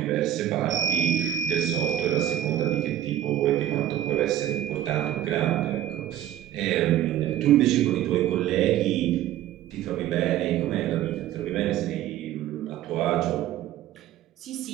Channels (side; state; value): left; quieter; 12.0 dB